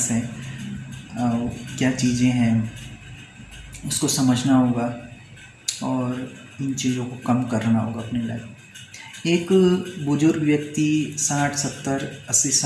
हैं, क्या चीज़ें हैं, उसको समझना होगा और इन चीज़ों को कम करना होगा अपनी लाइफ। एक बुजुर्ग व्यक्ति 60, 70, 80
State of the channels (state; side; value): identical; both; correlation 1.00